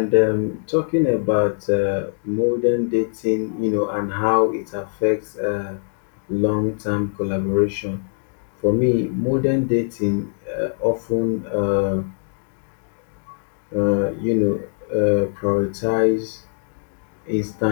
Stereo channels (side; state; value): right; silent; digital silence